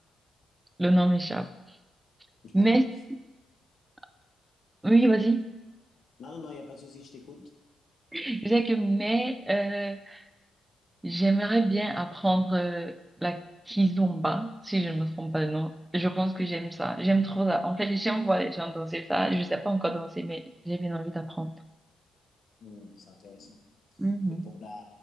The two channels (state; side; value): normal; both; correlation 0.97